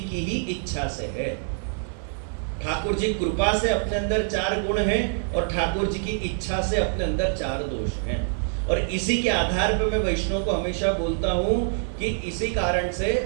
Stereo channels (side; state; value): left; silent; 61 dB below the other